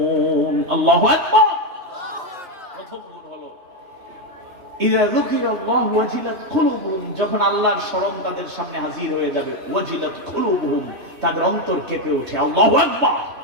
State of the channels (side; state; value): left; late; 3.3 ms